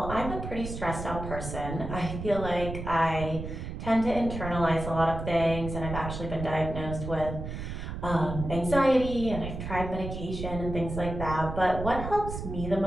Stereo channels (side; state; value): right; noise; rumble, 7 dB below the sound